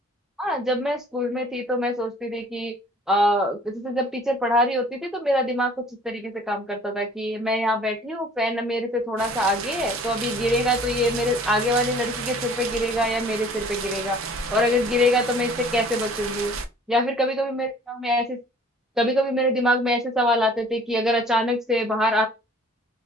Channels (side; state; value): both; normal; correlation 0.52